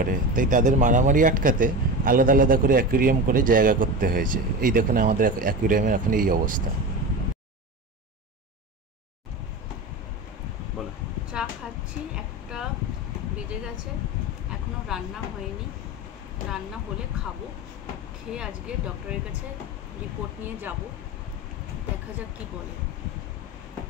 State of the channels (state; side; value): normal; both; correlation 0.26